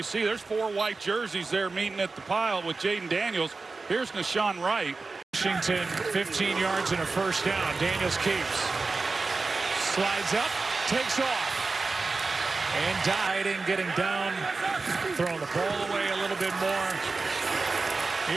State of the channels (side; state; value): left; quieter; 3.9 dB